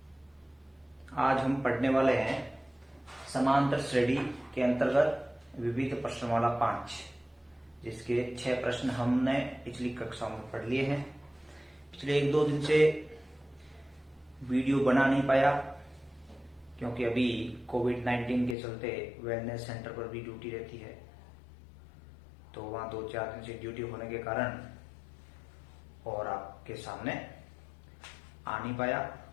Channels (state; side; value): drops out; right; at 18.6 s